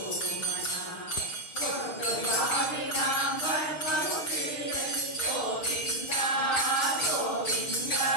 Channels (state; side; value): late; right; 6.5 ms